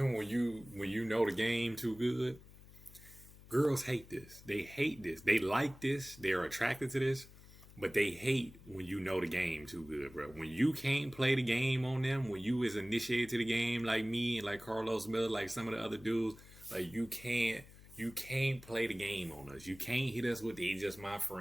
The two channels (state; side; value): noise; left; hum, 20 dB below the sound